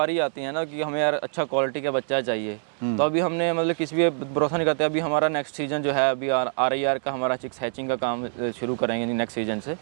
आती है ना, कि हमें यार अच्छा क्वालिटी का बच्चा चाहिए, तो अभी हमने मतलब किसी भी भरोसा नहीं करते। अभी हमारा नेक्स्ट सीजन जो है, अभी RIR का हमारा चिक्स हैचिंग का काम शुरू करेंगे नेक्स्ट सीजन से,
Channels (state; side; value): silent; left; digital silence